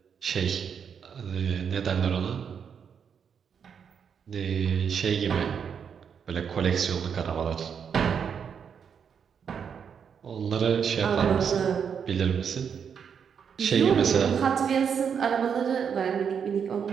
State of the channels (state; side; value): quieter; left; 7.2 dB